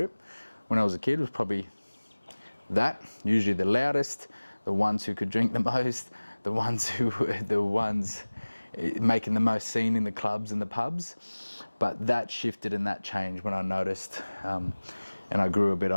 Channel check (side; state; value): both; inverted; correlation -1.00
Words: When I was a kid, it was probably that, usually the loudest, the ones who could drink the most, the ones who were the ones making the most scene in the clubs and the pubs. But that shifted and that changed when I noticed, and I grew a bit